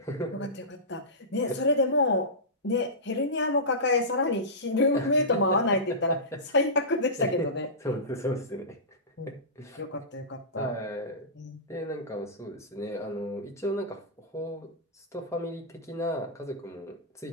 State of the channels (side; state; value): both; normal; correlation -0.19